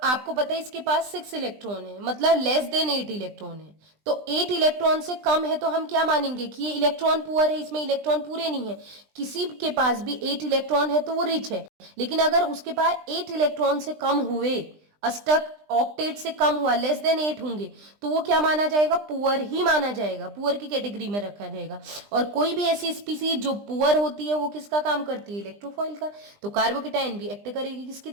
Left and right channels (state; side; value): late; left; 20 ms